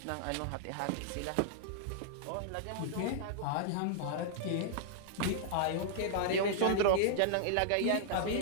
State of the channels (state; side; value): different; both; correlation -0.01